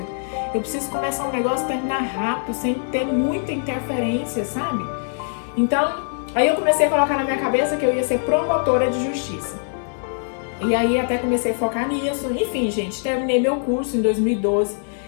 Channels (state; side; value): silent; right; digital silence